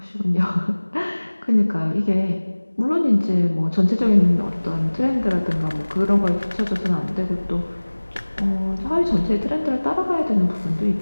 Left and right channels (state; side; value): inverted; both; correlation -1.00